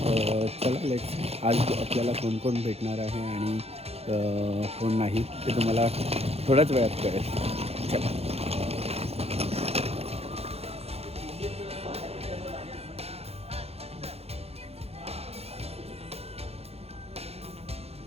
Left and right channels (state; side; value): late; left; 0.29 ms